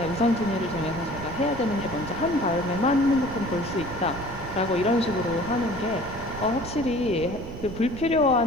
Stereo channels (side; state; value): right; noise; rumble, 12 dB below the sound